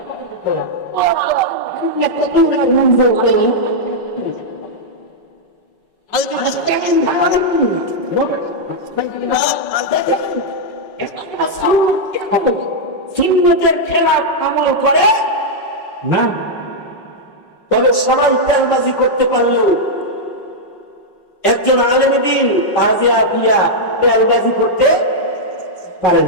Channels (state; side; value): late; right; 5.4 ms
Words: সুন্নতের খেলাফ আমল করে না। তবে সবাই তেলবাজি করতে পারলেও একজন আলেম দ্বীন তাজিয়া দিয়া তেলবাজি করতে পারে